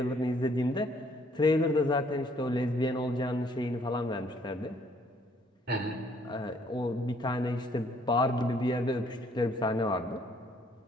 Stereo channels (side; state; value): both; normal; correlation 0.64